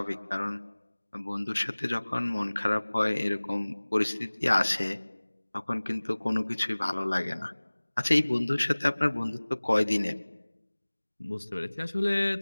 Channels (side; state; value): both; inverted; correlation -1.00